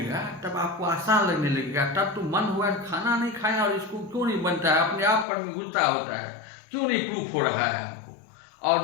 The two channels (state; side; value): drops out; right; at 5.2 s